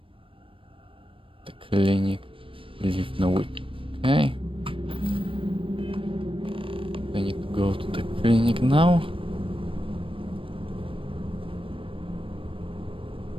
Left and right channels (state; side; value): late; left; 0.25 ms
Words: clinic. Leave no week. Okay. I need to go to the clinic now.